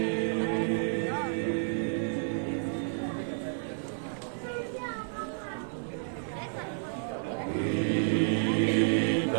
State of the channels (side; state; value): left; silent; digital silence